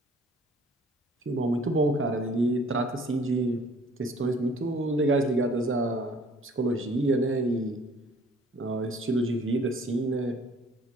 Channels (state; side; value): normal; both; correlation 0.55